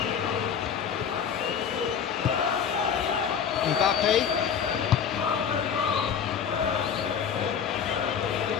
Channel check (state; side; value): quieter; right; 7.5 dB